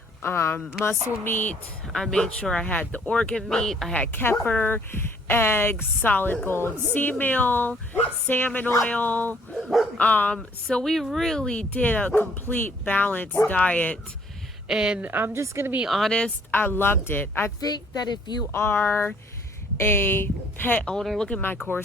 muscle meat, I made sure I had the organ meat. I had kefir, eggs, solid gold sea meal, salmon oil. So we really did a complete balanced diet. And I'm just going to be honest, I loved it. I think that if you are a pet owner, look at my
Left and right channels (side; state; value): both; normal; correlation 0.61